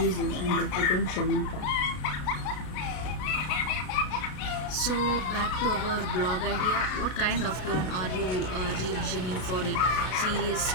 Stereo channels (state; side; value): late; right; 33 ms